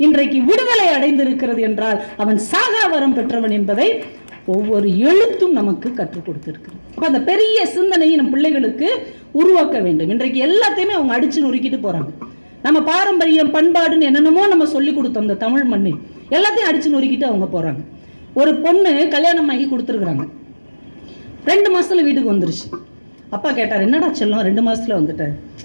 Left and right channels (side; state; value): both; inverted; correlation -1.00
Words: இன்றைக்கு விடுதலை அடைந்திருக்கிறது என்றால் அவன் சாகாவரம் பெற்றவன் என்பதை ஒவ்வொரு எழுத்தும் நமக்கு கற்றுக் கொடுத்துருக்கு. அப்போ அந்த பெரிய சிந்தனையை நம் பிள்ளைகளுக்கு உருவாக்க வேண்டும். இன்றைக்கு எல்லாத்தையுமே அவங்க அடிச்சு நொறுக்கிட்டு போறாங்க. நம்ம பாரம்பரியம் பண்பாடுன்னு என்னென்னமோ நம்ம சொல்லி கொடுத்தோம் இந்த தமிழ் மண்ணில், எல்லாத்தையும் அடிச்சு நொறுக்கிட்டு அவங்க போறாங்க. ஒரு பொண்ணு கல்யாணம் ஆகி கொடுத்துருக்குறாங்க, 2 மாசத்துல வீட்டுக்கு வந்துருச்சு. அப்பா கேட்டார், என்னடா செல்லம் 2 மாசத்துல வந்துட்டேன்,